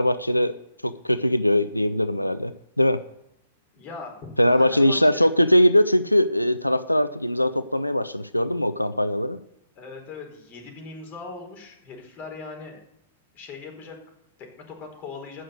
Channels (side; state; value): both; inverted; correlation -0.92